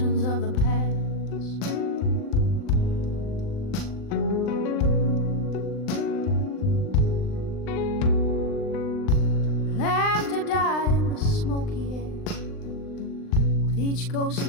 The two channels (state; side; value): late; right; 39 ms